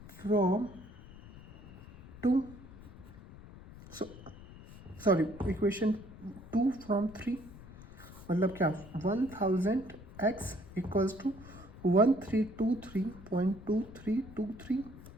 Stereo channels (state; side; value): noise; left; rumble, 17 dB below the sound